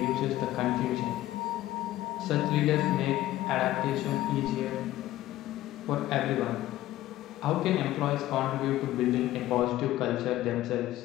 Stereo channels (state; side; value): quieter; right; 15.0 dB